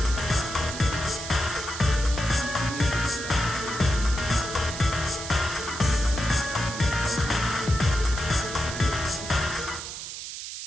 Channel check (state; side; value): noise; right; hiss, 8 dB below the sound